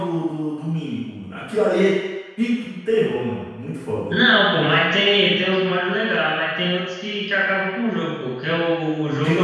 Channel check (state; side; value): identical; both; correlation 1.00